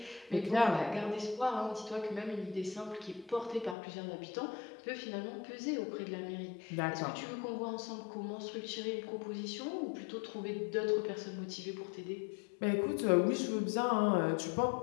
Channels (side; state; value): right; drops out; at 3.8 s